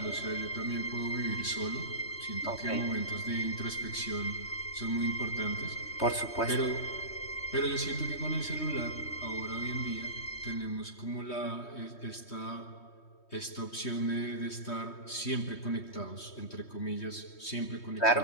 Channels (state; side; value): late; right; 3.2 ms